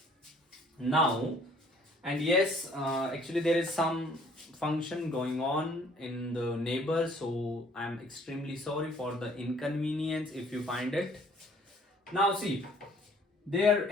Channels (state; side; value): normal; both; correlation 0.58